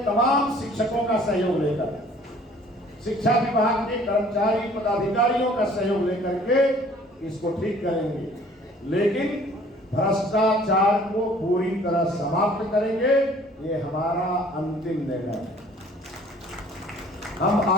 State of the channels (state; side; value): normal; both; correlation 0.54